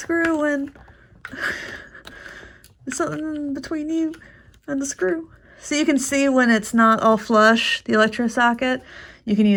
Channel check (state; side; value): identical; both; correlation 1.00